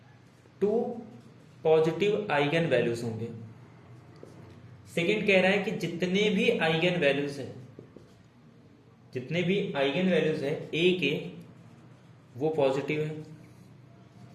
2 पॉजिटिव आइगन वैल्यूज होंगे। सेकंड कह रहा है कि जितने भी आइगन वैल्यूज है ए के, वो पॉजिटिव है।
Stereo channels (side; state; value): both; identical; correlation 1.00